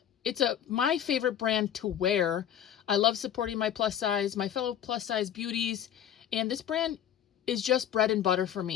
It's my favorite brand to wear. I love supporting my fellow plus size beauties, and this brand is just bread and butter for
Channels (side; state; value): right; quieter; 10.0 dB